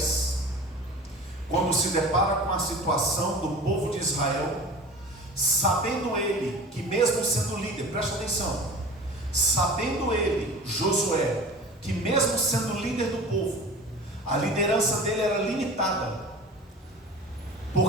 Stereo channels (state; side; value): normal; both; correlation 0.38